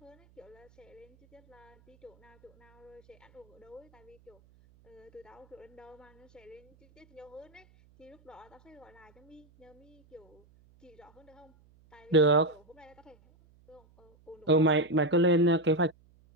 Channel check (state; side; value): noise; right; hum, 29 dB below the sound